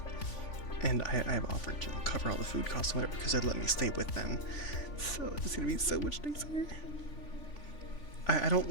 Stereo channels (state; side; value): late; right; 3.5 ms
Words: And I've offered to cover all the food costs and whatever because they'd let me stay with them. So it's gonna be so much nicer. I don't